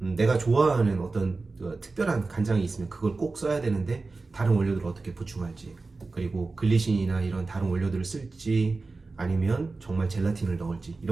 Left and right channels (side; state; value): left; quieter; 3.8 dB